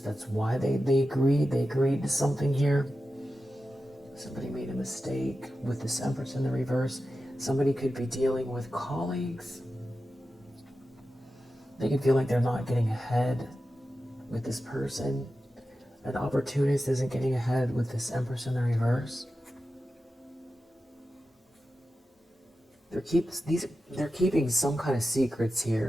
that's why they agreed. They agreed to something here. Somebody made a mistake with this Empress in the reverse. Somebody could be dealing with colleagues. They can feel like they're not getting ahead with this person. An opportunist isn't getting ahead with this Empress in the reverse. They're keeping some kind of secrets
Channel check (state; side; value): normal; both; correlation 0.92